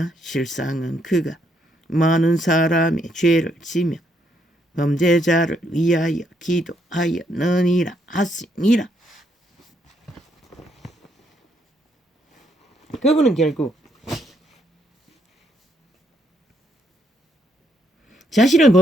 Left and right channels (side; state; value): both; normal; correlation 0.74